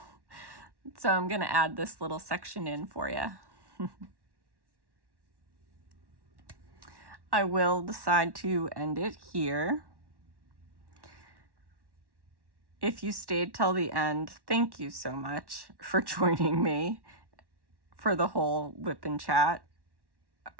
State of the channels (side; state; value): left; late; 1.1 ms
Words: So I'm going to add this little section in for you. I will decide to end it here. If you stayed till the end, thank you so much for joining me for the whole WIP and chat.